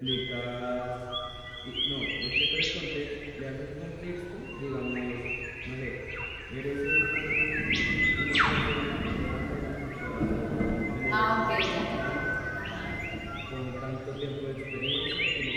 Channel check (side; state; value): both; identical; correlation 1.00